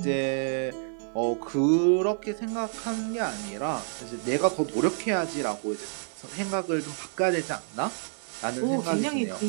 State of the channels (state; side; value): silent; left; 59 dB below the other